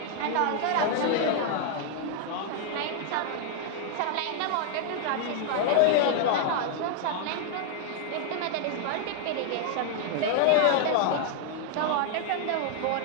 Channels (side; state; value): both; different; correlation 0.00